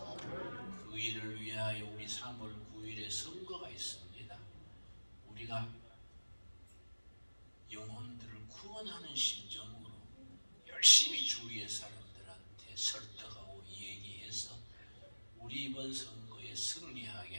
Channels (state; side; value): inverted; both; correlation -1.00